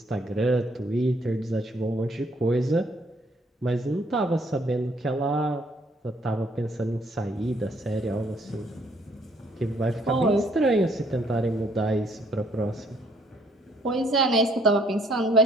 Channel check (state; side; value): normal; both; correlation 0.65